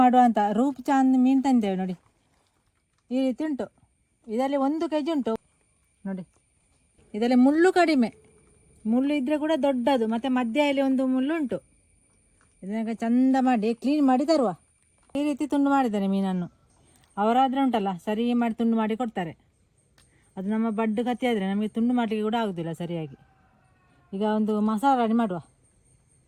ಮಾಡುವ ಅಂತ ರೂಪ್ ಚಾಂದ್ ಮೀನು ತಂದೇವೆ ನೋಡಿ. ಈ ರೀತಿ ಉಂಟು. ಇದರಲ್ಲಿ 1 kg ಉಂಟು ನೋಡಿ. ಇದರಲ್ಲಿ ಮುಳ್ಳು ಕಡಿಮೆ, ಮುಳ್ಳು ಇದ್ದರೆ ಕೂಡ ದೊಡ್ಡದು, ಮತ್ತು ಮಧ್ಯದಲ್ಲಿ ಒಂದು ಮುಳ್ಳು ಉಂಟು. ಇದನ್ನ ಚಂದ ಮಾಡಿ ಕ್ಲೀನ್ ಮಾಡಿ ತರುವ. ಈ ರೀತಿ ತುಂಡು ಮಾಡಿದ್ದಾರೆ ಮೀನನ್ನು. ಅವರಾದರೆ ಉಂಟಲ್ಲ ಸರಿ ಮಾಡಿ ತುಂಡು ಮಾಡಿ ಕೊಡ್ತಾರೆ. ಅದು ನಮ್ಮ ಬಡ್ಡು ಕತ್ತಿ ಆದರೆ ನಮಗೆ ತುಂಡು ಮಾಡಲಿಕ್ಕೆ ಕೂಡ ಆಗೋದಿಲ್ಲ ಸರಿಯಾಗಿ. ಈಗ ಒಂದು ಮಸಾಲ ರೆಡಿ ಮಾಡುವ.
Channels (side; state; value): both; identical; correlation 1.00